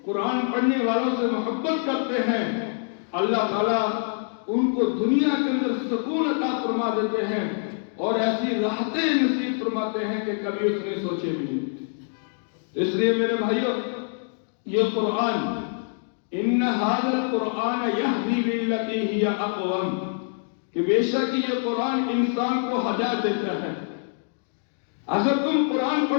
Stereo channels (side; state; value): right; silent; digital silence